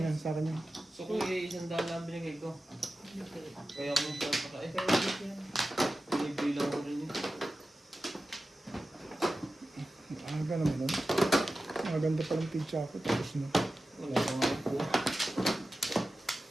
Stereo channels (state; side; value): normal; both; correlation 0.94